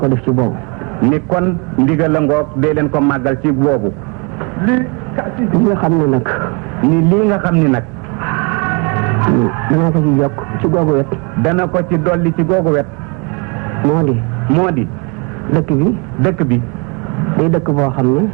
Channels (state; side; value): quieter; left; 32.3 dB